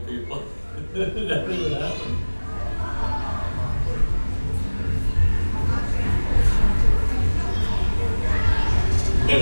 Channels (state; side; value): inverted; both; correlation -1.00